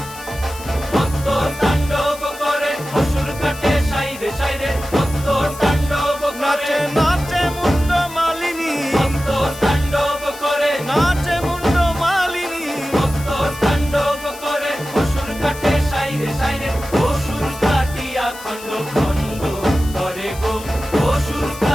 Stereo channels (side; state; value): left; noise; hiss, 16 dB below the sound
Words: মত্ত তাণ্ডব করে অসুর কাটে সাইরে সাইরে, মত্ত তাণ্ডব করে। নাচে মুন্ড মালিনী, মত্ত তাণ্ডব করে, নাচে মুন্ড মালিনী, মত্ত তাণ্ডব করে অসুর কাটে সাইরে সাইরে, অসুর কাটিয়া খণ্ড খণ্ড করে গো, অসুর